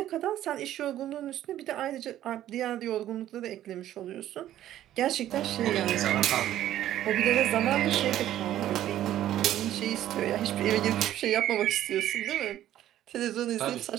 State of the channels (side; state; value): left; quieter; 12.6 dB